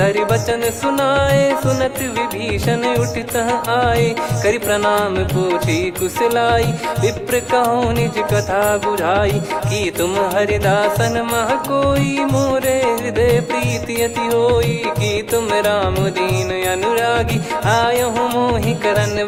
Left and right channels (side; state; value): both; identical; correlation 1.00